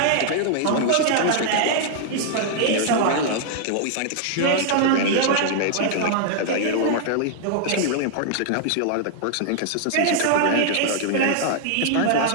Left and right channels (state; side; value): different; both; correlation -0.01